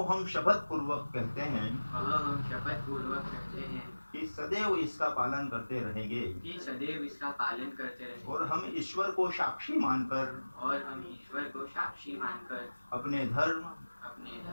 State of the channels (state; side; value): inverted; both; correlation -1.00